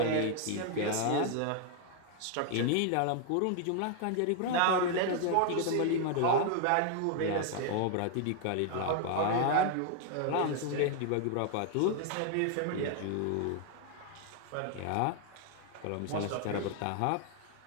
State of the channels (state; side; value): different; both; correlation 0.00